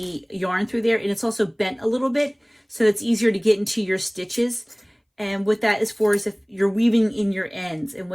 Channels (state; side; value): identical; both; correlation 1.00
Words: yarn through there, and it's also bent a little bit, so it's easier to get into your stitches. And what that is for is if you're weaving in your ends. And